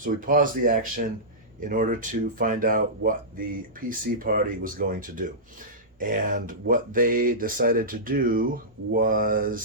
we paused the action in order to find out what the PC party was going to do. And what they decided to do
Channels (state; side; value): normal; both; correlation -0.17